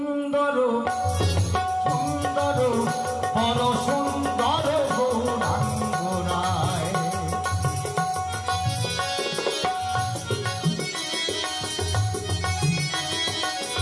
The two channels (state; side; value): identical; both; correlation 1.00